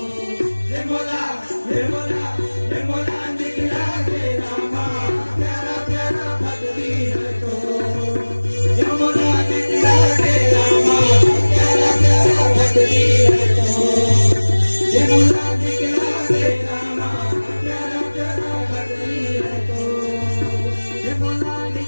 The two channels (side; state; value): both; inverted; correlation -1.00